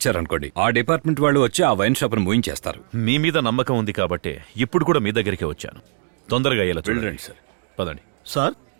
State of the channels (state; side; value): silent; left; digital silence